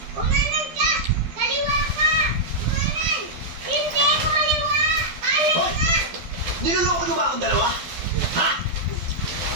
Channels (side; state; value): left; late; 12 ms